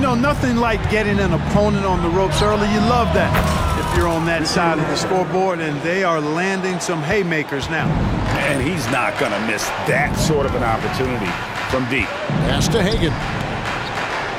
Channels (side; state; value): both; identical; correlation 1.00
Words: nothing like getting an opponent on the ropes early. You love that if you're on that side of the scoreboard, and they are landing some haymakers now. And he's not going to miss that sort of an opportunity from deep. Pass to Hagan.